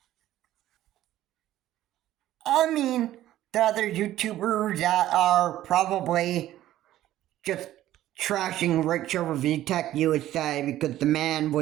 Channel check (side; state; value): left; quieter; 13.7 dB